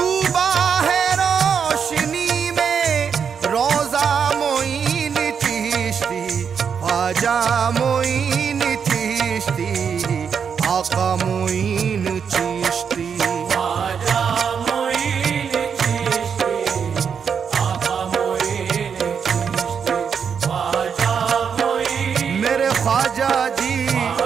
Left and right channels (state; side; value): quieter; left; 6.9 dB